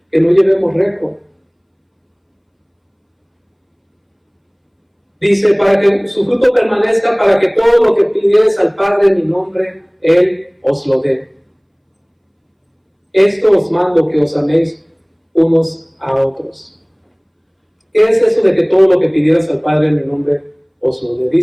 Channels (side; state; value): both; identical; correlation 1.00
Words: Que no llevemos récord. Dice, para que su fruto permanezca, para que todo lo que pidieres al Padre en mi nombre, Él os lo dé. Esto os mando, que os améis unos a otros. ¿Qué es eso de que todo lo que pidieras al Padre en mi nombre os lo dé?